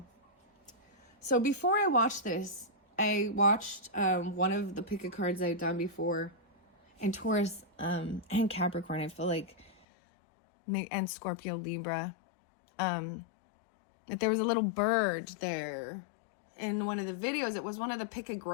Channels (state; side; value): drops out; right; at 9.9 s